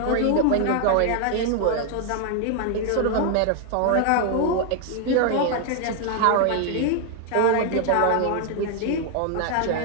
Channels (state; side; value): different; both; correlation 0.00